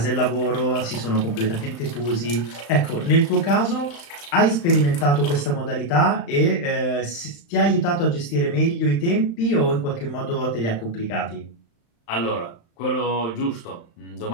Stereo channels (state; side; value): late; right; 35 ms